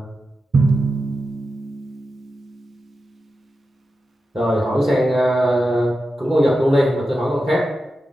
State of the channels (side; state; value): both; normal; correlation 0.90